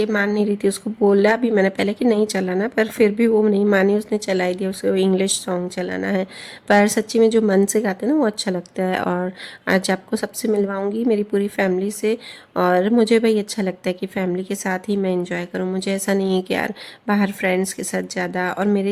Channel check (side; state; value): both; identical; correlation 1.00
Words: मान नहीं रही थी, उसको बोला भी मैंने पहले कि नहीं चलाना, पर फिर भी वो नहीं मानी, उसने चला ही दिया, उसे इंग्लिश सॉन्ग चलाना है। पर सच्ची में जो मन से गाते हैं ना वो अच्छा लगता है। और आज आपको सबसे मिलवाऊंगी मेरी पूरी फैमिली से, और मुझे भाई अच्छा लगता है कि फैमिली के साथ ही मैं इंजॉय करूं। मुझे ऐसा नहीं है कि यार बाहर फ्रेंड्स के साथ ज़्यादा, और